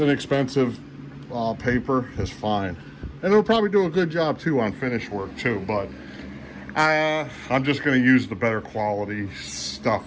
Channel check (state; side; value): identical; both; correlation 1.00